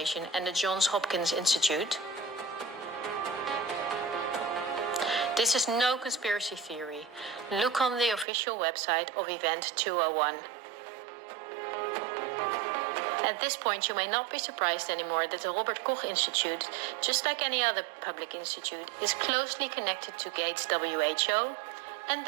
and the Johns Hopkins Institute? This is no conspiracy theory. Look on the official website of Event 201. At this point, you may not be surprised anymore that the Robert Koch Institute, just like any other public institute, is closely connected to Gates WHO, and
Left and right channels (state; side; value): drops out; left; at 8.2 s